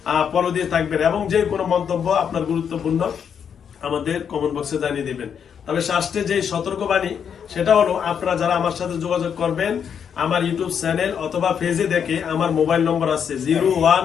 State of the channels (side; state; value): right; quieter; 7.6 dB